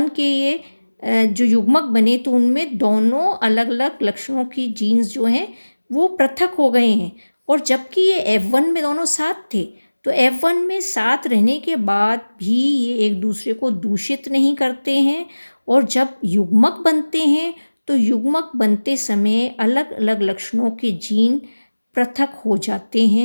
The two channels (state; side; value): inverted; both; correlation -1.00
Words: के ये जो युग्मक बने तो उनमें दोनों अलग अलग लक्षणों की जीन्स जो हैं वो पृथक हो गए हैं। और जबकि ये F1 में दोनों साथ थे, तो F1 में साथ रहने के बाद भी ये एक दूसरे को दूषित नहीं करते हैं, और जब युग्मक बनते हैं तो युग्मक बनते समय अलग अलग लक्षणों के जीन पृथक हो जाते